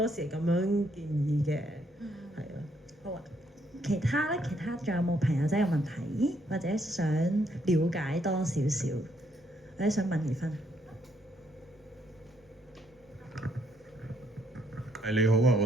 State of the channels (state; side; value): normal; both; correlation 0.72